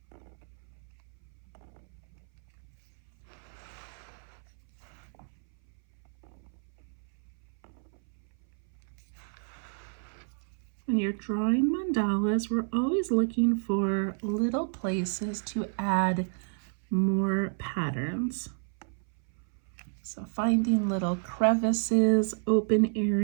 When you're drawing mandalas, we're always looking for little places to add more patterns. So finding little crevices, open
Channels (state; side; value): silent; left; 57 dB below the other